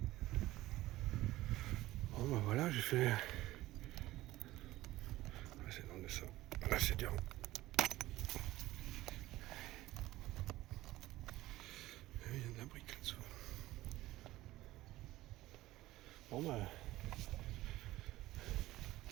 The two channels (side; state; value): left; quieter; 16.8 dB